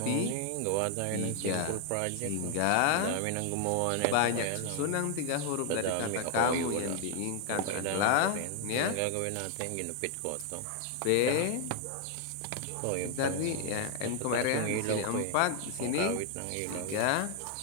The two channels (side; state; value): both; different; correlation 0.00